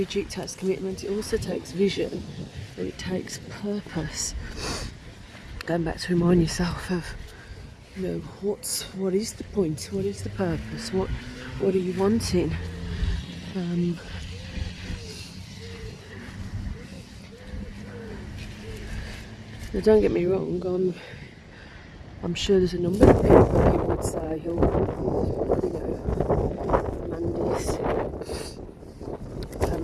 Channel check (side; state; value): both; identical; correlation 1.00